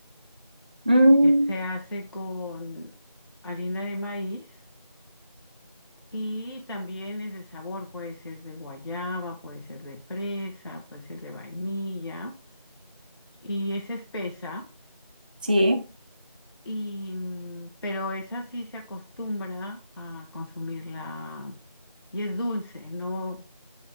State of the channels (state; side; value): inverted; both; correlation -0.87